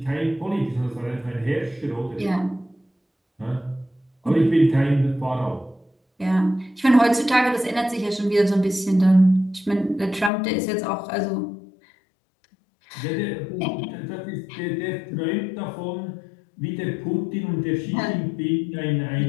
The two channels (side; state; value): right; drops out; at 10.3 s